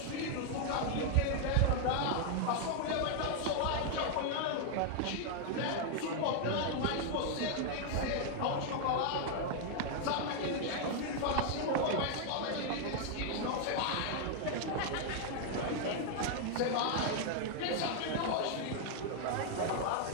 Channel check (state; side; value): different; both; correlation 0.00